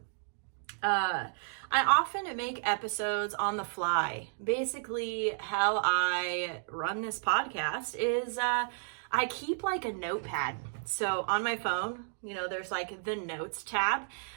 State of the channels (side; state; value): left; silent; digital silence